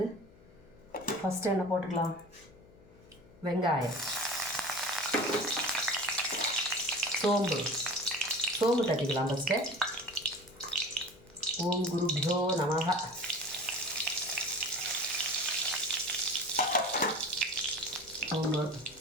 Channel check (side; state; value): left; noise; hum, 25 dB below the sound